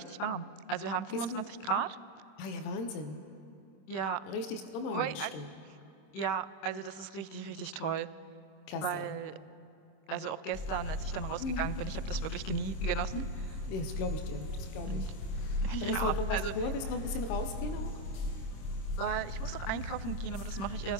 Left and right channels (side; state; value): right; late; 26 ms